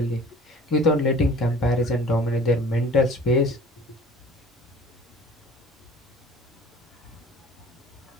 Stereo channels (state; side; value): normal; both; correlation 0.47